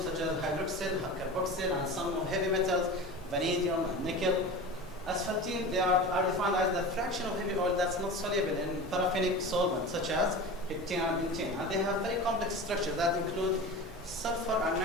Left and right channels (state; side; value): normal; both; correlation 0.31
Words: such as hydroxyl, carboxyl, and some heavy metals, vanadium, and nickel. Asphaltene, they are defined as the fraction of heavy oil that's not soluble in paraffinic solvents such as heptane and butane. And they have very complex structures that include sulfur and